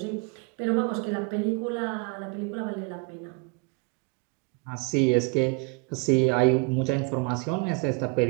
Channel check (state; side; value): quieter; left; 31.7 dB